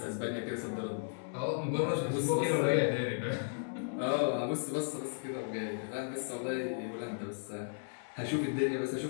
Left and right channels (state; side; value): silent; right; digital silence